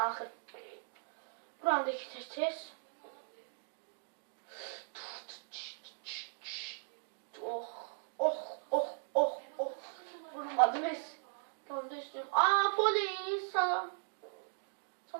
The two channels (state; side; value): silent; left; digital silence